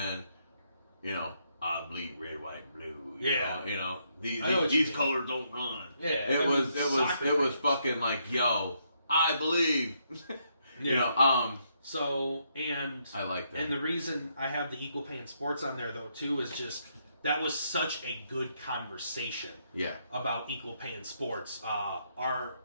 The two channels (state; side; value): inverted; both; correlation -0.75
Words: you know, I bleed red, white, and blue. You know, these colors don't run. Yeah, it was fucking like, yo, I believe. You know, So, and I like that. And the reason I have the equal pay in sports on there though too is just that was such a good conversation. Yeah. About equal pay in sports.